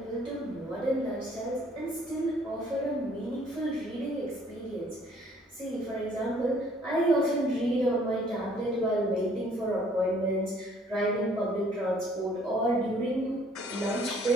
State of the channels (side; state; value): both; normal; correlation 0.60